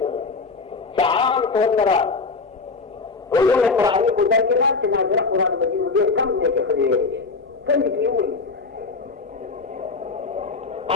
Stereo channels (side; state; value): right; quieter; 4.2 dB